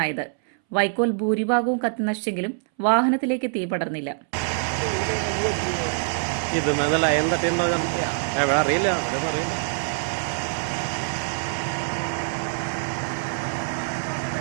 വൈക്കോൽ ഭൂരിഭാഗവും കത്തി നശിച്ചെങ്കിലും വാഹനത്തിലേക്ക് തീ പടർന്നില്ല. ഇത് ലൈൻ തട്ടിയുണ്ടോ അറിയില്ല.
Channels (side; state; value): left; silent; 61 dB below the other